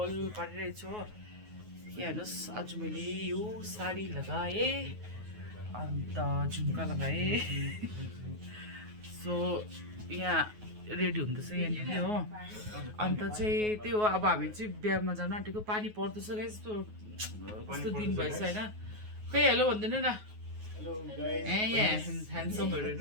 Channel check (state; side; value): late; left; 9.4 ms